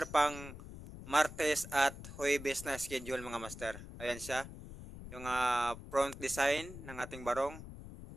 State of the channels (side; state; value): left; noise; rumble, 13 dB below the sound